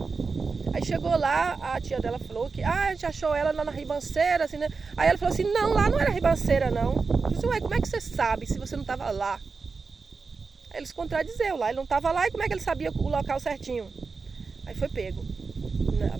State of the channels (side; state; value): left; quieter; 4.6 dB